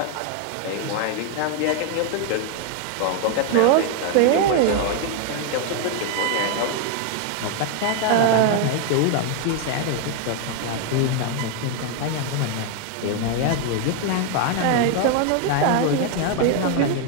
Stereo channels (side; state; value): both; different; correlation 0.00